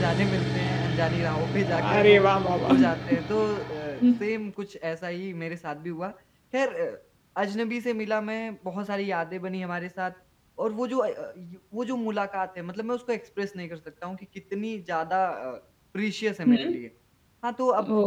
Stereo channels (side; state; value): both; identical; correlation 1.00